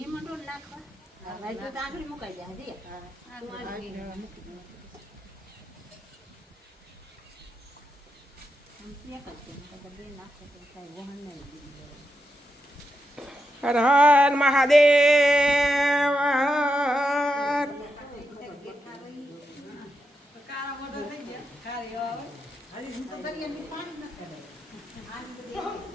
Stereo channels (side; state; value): both; normal; correlation 0.86